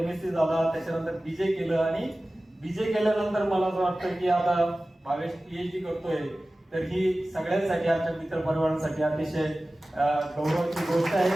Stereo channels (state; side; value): normal; both; correlation 0.96